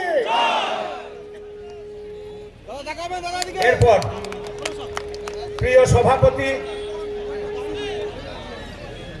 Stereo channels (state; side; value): identical; both; correlation 1.00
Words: এরপর প্রিয় সভাপতি,